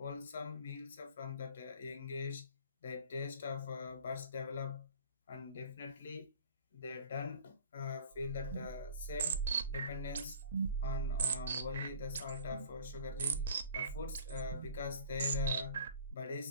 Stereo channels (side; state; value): both; inverted; correlation -0.48